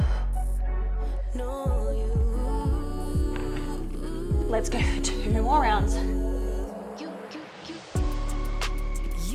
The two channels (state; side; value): identical; both; correlation 1.00